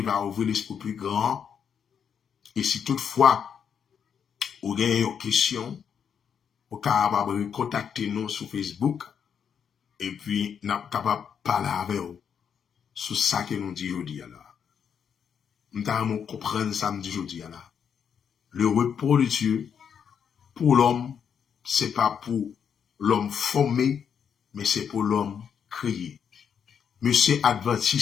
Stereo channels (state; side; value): quieter; right; 7.6 dB